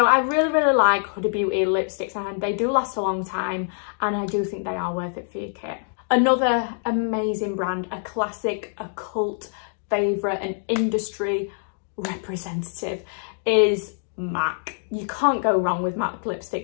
I really like Huda Beauty lipsticks, and they do last a long time, and I do think they are worth it for your kit. Another amazing brand, a classic, a cult favourite, an industry representative is MAC. You can't go wrong with MAC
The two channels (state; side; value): silent; right; digital silence